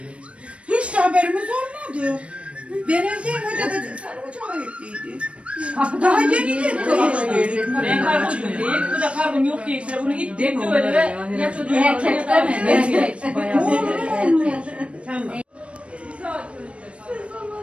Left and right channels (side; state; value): left; late; 0.061 ms